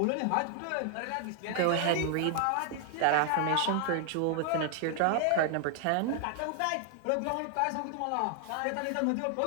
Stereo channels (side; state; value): both; different; correlation 0.00